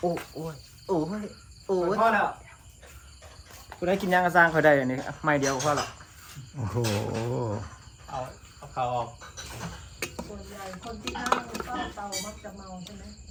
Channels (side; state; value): both; identical; correlation 1.00